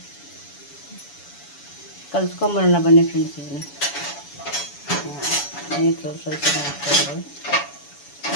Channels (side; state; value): right; late; 7.0 ms